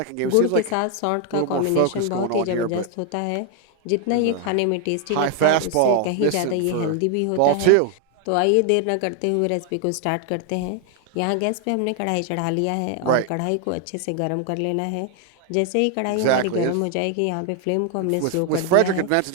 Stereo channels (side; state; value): both; different; correlation 0.00